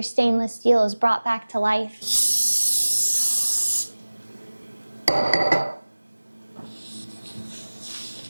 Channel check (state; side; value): inverted; both; correlation -1.00